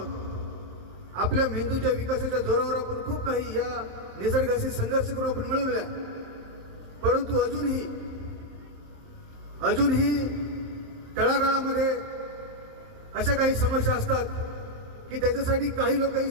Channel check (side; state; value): left; late; 27 ms